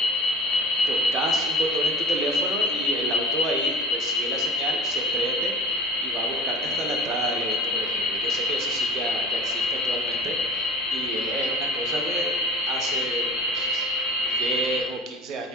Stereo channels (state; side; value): normal; both; correlation 0.37